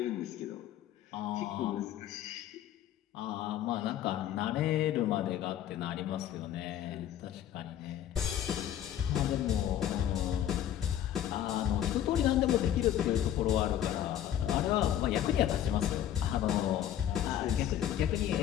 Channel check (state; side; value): quieter; right; 11.1 dB